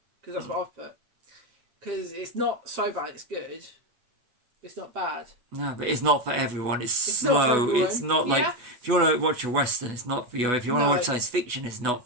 because that's what I've put. Because it's not so bad. It's good. It's not bad. No, but it's not for everyone. It's slow. It's not like if you want to watch a western, it's not for you. If you want to watch science fiction, it's not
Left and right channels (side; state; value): left; late; 8.1 ms